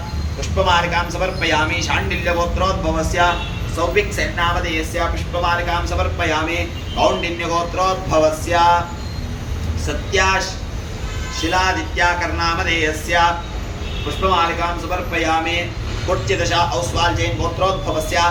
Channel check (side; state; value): both; identical; correlation 1.00